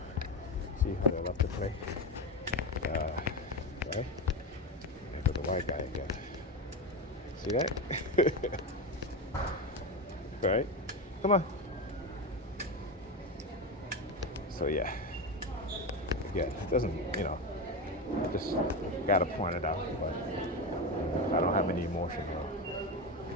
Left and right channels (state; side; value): normal; both; correlation 0.17